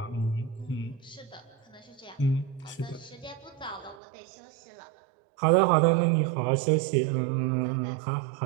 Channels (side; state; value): left; drops out; at 4.0 s